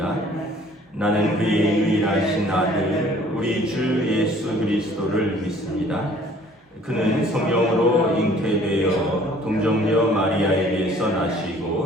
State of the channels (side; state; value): both; normal; correlation 0.55